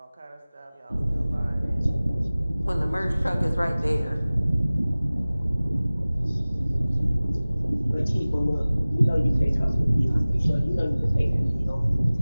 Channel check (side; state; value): both; inverted; correlation -0.98